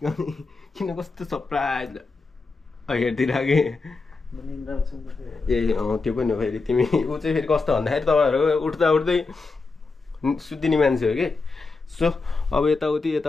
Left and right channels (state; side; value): quieter; right; 4.0 dB